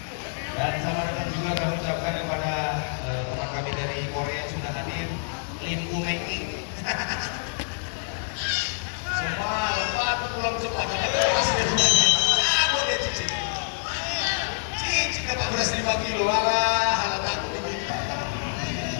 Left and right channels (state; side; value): silent; right; digital silence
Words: Dan selamat datang juga kami ucapkan kepada teman kami dari Korea yang sudah hadir, Lim Umeng. Semua lompat pulang cepat. Boleh cicing. Cicing dapat beras 5 kilo. Alah, halah takut ini.